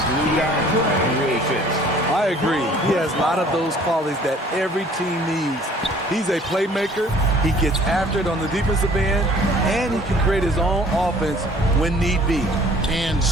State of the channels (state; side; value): normal; both; correlation 0.54